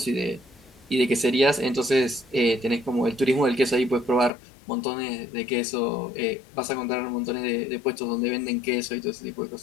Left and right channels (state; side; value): drops out; right; at 4.3 s